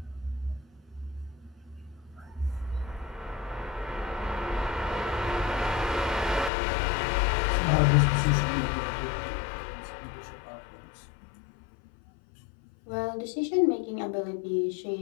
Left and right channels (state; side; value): drops out; right; at 6.5 s